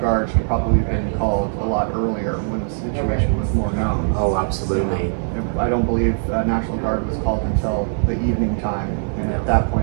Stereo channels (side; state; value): left; silent; digital silence